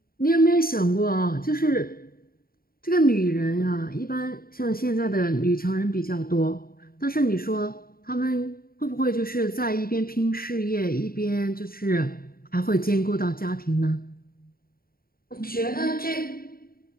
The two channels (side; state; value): right; late; 0.43 ms